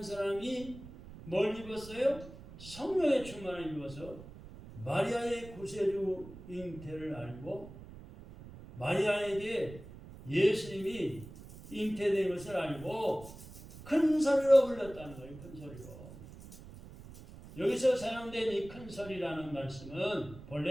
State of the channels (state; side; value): noise; right; rumble, 16 dB below the sound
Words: 사람이 뭘 입었어요? 성령의 충만을 입어서 마리아의 구세주 잉태를 알고 마리아에게 예수님이 잉태된 것을 알고 큰 소리로 불렀다는 거예요. 큰 소리로. 여기서 사용된 이 큰 소리라는 말씀은